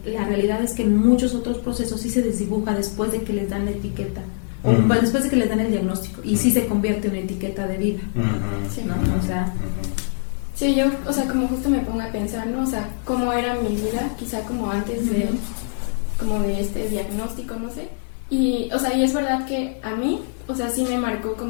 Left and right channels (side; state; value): right; silent; 58 dB below the other